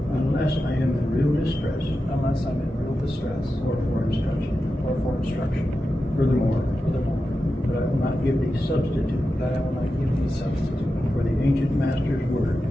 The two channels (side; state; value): both; normal; correlation 0.91